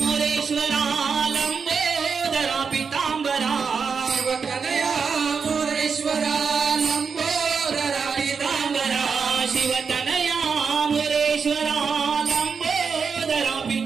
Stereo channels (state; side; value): quieter; left; 5.7 dB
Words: मोरेश्वरा लंबोदरा पीतांबरा शिवतनया मोरेश्वरा लंबोदरा पीतांबरा शिवतनया मोरेश्वरा लंबोदरा